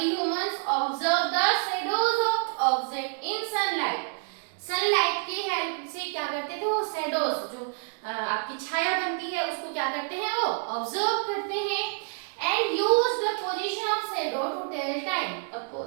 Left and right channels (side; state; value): left; silent; 55 dB below the other